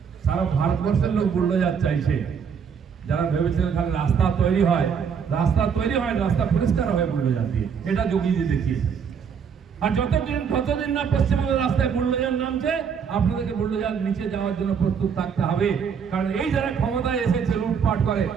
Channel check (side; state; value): left; quieter; 6.8 dB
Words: সারা ভারতবর্ষের লোক বুলডোজার চাইছে। যারা ভেবেছিলেন খালি রাস্তা তৈরি হয়, রাস্তা পরিষ্কার হয় বুলডোজার দিয়ে, এটা যোগীজি দেখিয়েছে। আর যতদিন না পশ্চিমবঙ্গের রাস্তায় বুলডোজার নামছে, আপনাদেরকে বুলডোজার নিচে যাওয়ার জন্য প্রস্তুত থাকতে হবে। কারণ এই যারা ক্ষমতায় এসেছে লুটপাট করে,